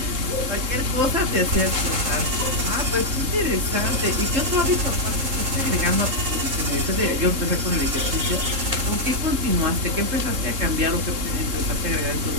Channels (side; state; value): left; late; 3.7 ms